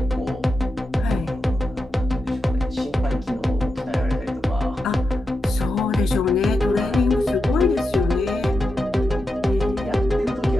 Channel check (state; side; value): normal; both; correlation 0.88